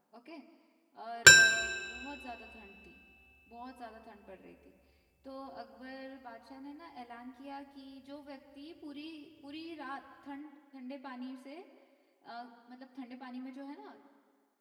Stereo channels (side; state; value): both; identical; correlation 1.00